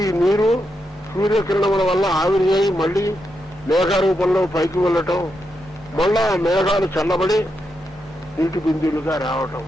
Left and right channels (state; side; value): normal; both; correlation 0.84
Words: ఈ నీరు సూర్యకిరణముల వల్ల ఆవిరి అయి మళ్ళీ మేఘ రూపంలో పైకి వెళ్ళటం, మళ్ళా మేఘాలు చల్లబడి నీటి బిందువులుగా రావటం,